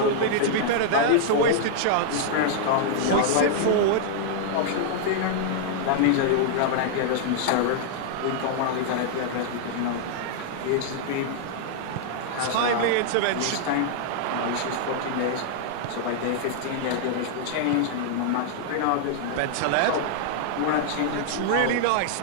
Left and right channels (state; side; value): different; both; correlation -0.01